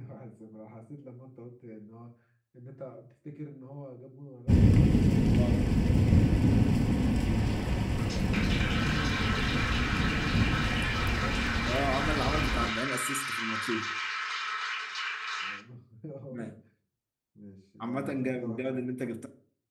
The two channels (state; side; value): identical; both; correlation 1.00